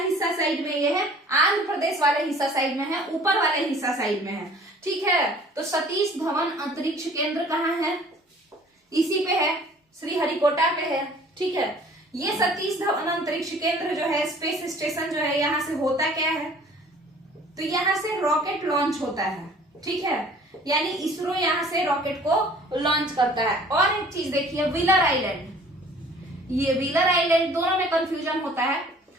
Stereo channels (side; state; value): both; normal; correlation 0.52